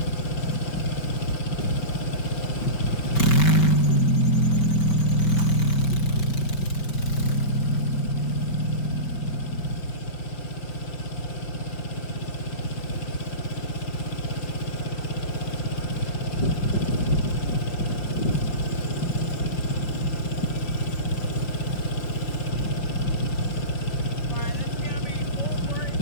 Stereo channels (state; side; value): late; right; 5.0 ms